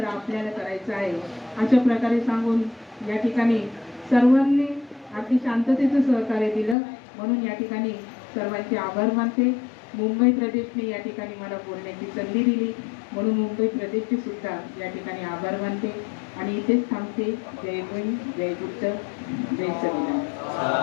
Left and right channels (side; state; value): right; drops out; at 6.8 s